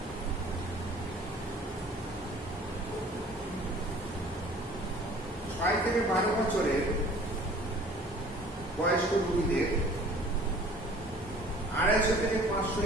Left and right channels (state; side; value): normal; both; correlation 0.50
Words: থেকে 12 বছরের বয়স্ক রোগীদের 250 থেকে 500